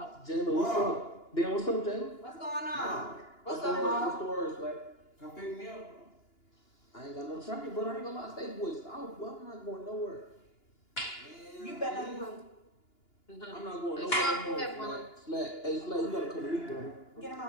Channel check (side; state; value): right; late; 2.9 ms